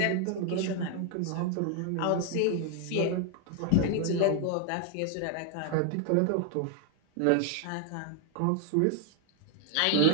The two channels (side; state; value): both; different; correlation 0.00